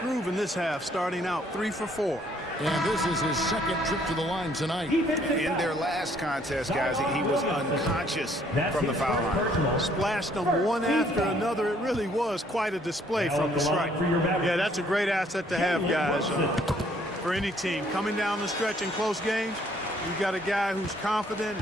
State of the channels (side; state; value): both; normal; correlation 0.64